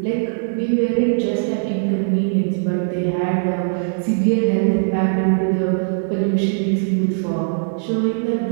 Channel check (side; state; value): left; silent; digital silence